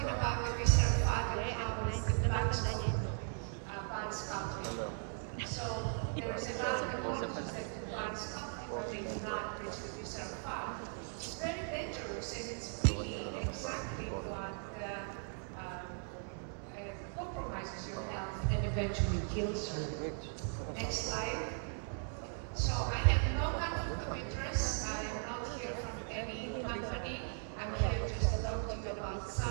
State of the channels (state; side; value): silent; left; 52 dB below the other